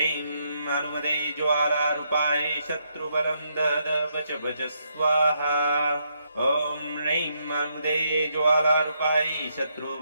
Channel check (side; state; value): both; inverted; correlation -0.78